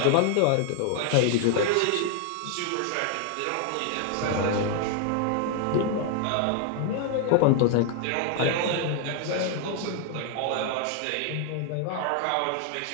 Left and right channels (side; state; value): both; different; correlation 0.00